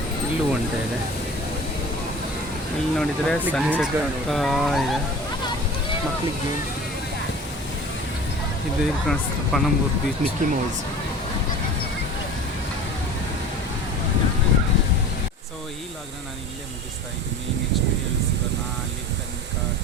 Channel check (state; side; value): normal; both; correlation 0.39